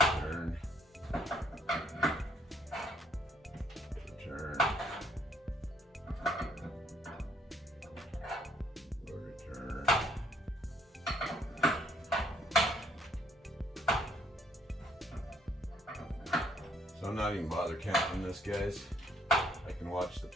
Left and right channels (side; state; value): both; normal; correlation 0.66